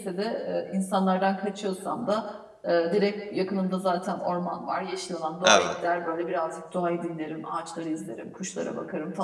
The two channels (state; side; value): identical; both; correlation 1.00